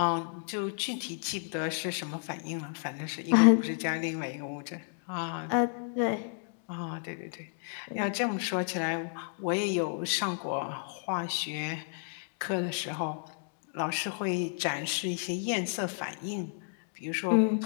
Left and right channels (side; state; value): right; silent; digital silence